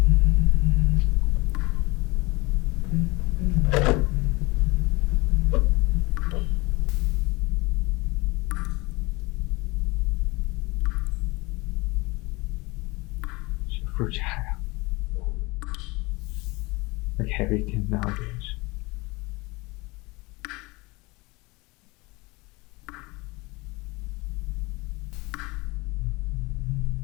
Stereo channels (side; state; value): right; quieter; 24.2 dB